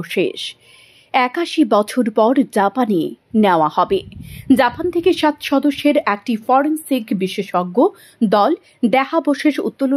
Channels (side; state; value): both; identical; correlation 1.00